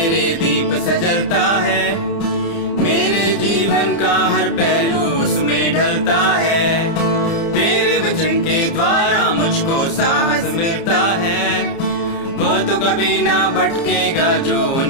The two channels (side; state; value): right; late; 30 ms